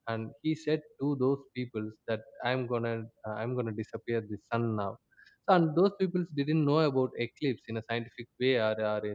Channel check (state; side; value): identical; both; correlation 1.00